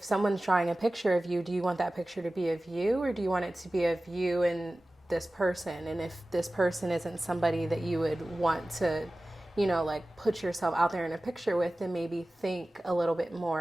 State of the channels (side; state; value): both; normal; correlation 0.97